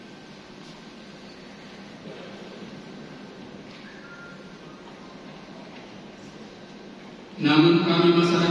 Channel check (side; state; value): both; identical; correlation 1.00